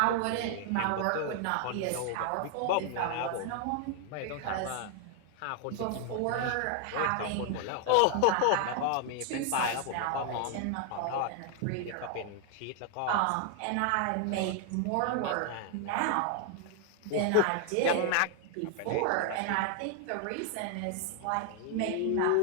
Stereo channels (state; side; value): different; both; correlation 0.00